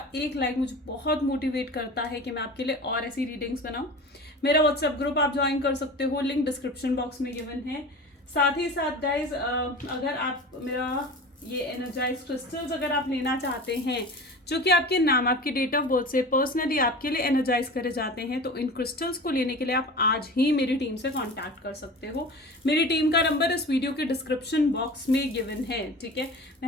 एक लाइक मुझे बहुत मोटिवेट करता है कि मैं आपके लिए और ऐसी रीडिंग्स बनाऊं। मेरा व्हाट्सएप ग्रुप आप ज्वाइन कर सकते हो, लिंक डिस्क्रिप्शन बॉक्स में गिवन है। साथ ही साथ गाइज, अगर आप मेरा ये एनर्जाइज क्रिस्टल्स अगर आप लेना चाहते हैं जो कि आपके नाम, आपकी डेट ऑफ बर्थ से पर्सनली आपके लिए एनर्जाइज करे जाते हैं, तो इन क्रिस्टल्स को लेने के लिए आप आज ही मेरी टीम से कांटेक्ट कर सकते हो। मेरी टीम का नंबर इस वीडियो के डिस्क्रिप्शन बॉक्स में गिवन है, ठीक है।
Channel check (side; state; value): both; normal; correlation 0.35